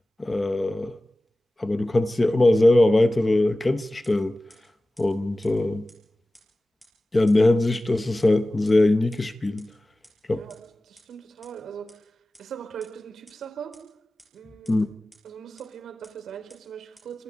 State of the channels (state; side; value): normal; both; correlation 0.96